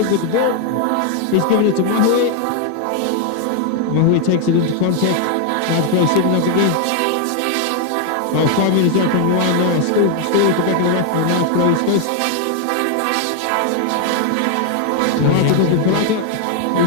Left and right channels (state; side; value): different; both; correlation 0.00